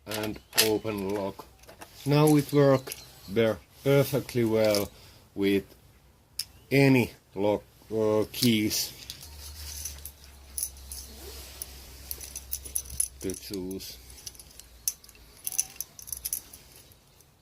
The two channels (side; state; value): both; identical; correlation 1.00